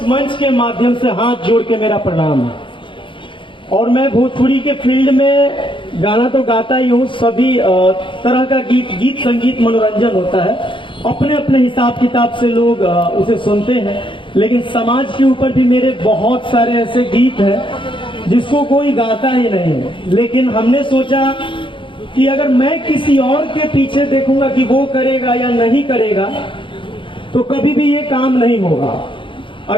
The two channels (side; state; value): right; late; 0.24 ms